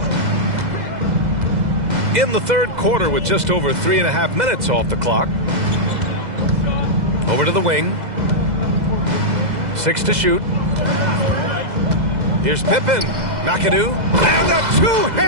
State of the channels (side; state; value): left; late; 2.0 ms